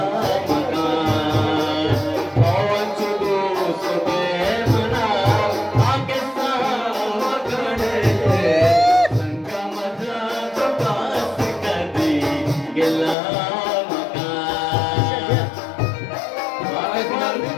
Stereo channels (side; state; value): right; drops out; at 13.2 s